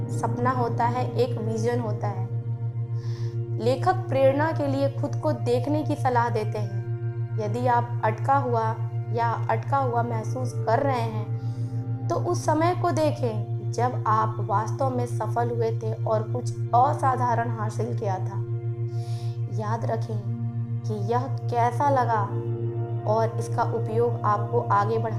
सपना होता है, एक विजन होता है। लेखक प्रेरणा के लिए खुद को देखने की सलाह देते हैं। यदि आप अटका हुआ महसूस कर रहे हैं तो उस समय को देखें जब आप वास्तव में सफल हुए थे और कुछ असाधारण हासिल किया था। याद रखें कि यह कैसा लगा और इसका उपयोग आपको आगे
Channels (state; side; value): identical; both; correlation 1.00